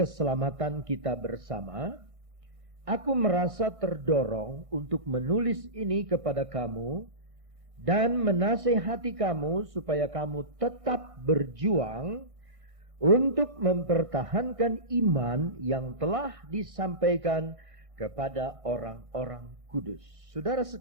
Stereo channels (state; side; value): late; left; 1.6 ms